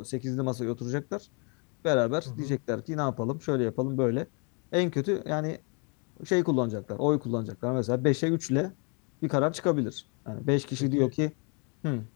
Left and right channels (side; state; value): right; quieter; 35.9 dB